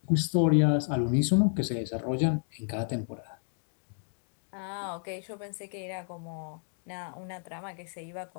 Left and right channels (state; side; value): silent; right; digital silence